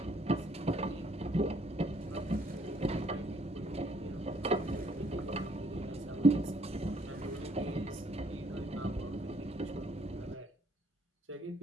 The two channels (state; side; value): normal; both; correlation 0.66